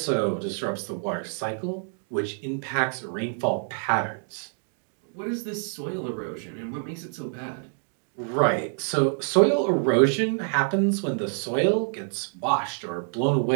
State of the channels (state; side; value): silent; left; 60 dB below the other